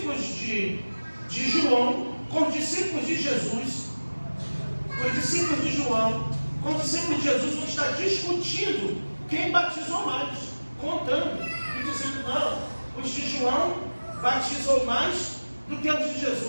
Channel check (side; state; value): both; inverted; correlation -1.00